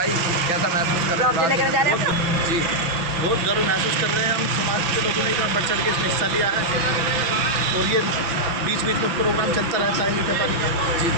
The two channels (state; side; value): late; left; 6.0 ms